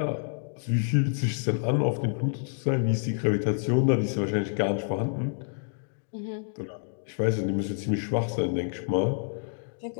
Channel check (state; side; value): silent; right; digital silence